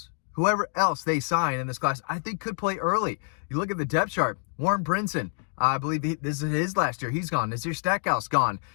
they sign in this class, I think could play early. You look at the depth chart. Warren Brinson, I believe this is his last year. He's gone. Nazir Stackhouse gone.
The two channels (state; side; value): silent; right; 60 dB below the other